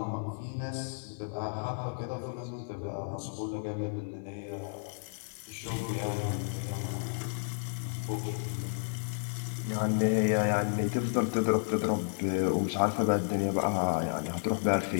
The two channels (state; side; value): silent; right; 56 dB below the other